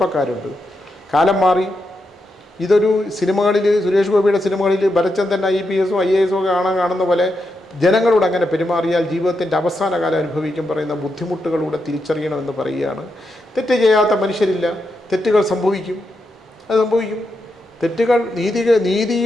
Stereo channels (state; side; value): normal; both; correlation 0.84